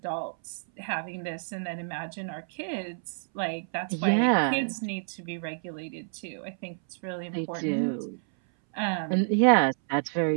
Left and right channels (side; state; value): left; silent; 59 dB below the other